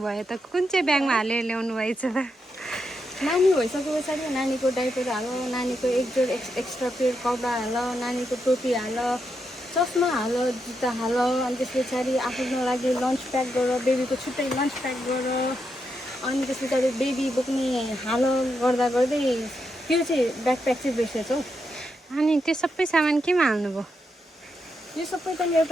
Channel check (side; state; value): both; normal; correlation 0.83